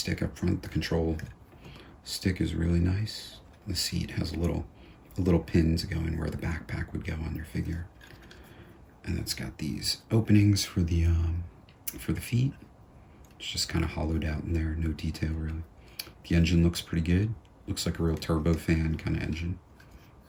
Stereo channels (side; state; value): both; identical; correlation 1.00